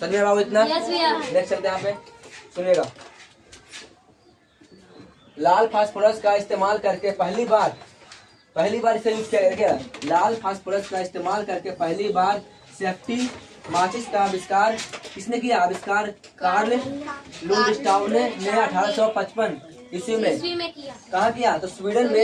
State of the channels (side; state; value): both; identical; correlation 1.00